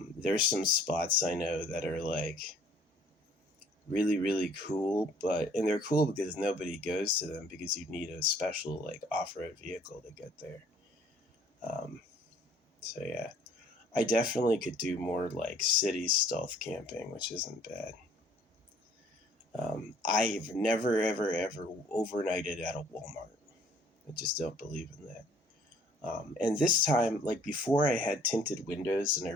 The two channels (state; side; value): normal; both; correlation 0.57